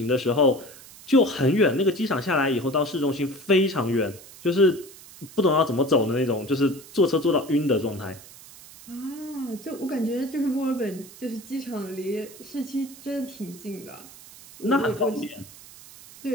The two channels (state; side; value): noise; right; hiss, 19 dB below the sound